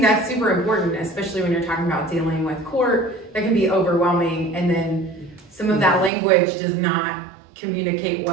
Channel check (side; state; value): left; drops out; at 6.1 s